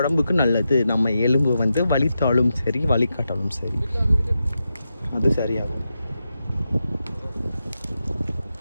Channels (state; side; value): inverted; both; correlation -0.88